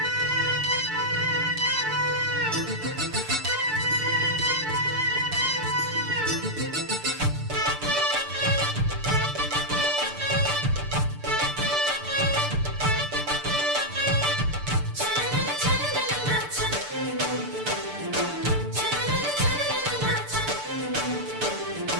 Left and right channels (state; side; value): late; left; 6.8 ms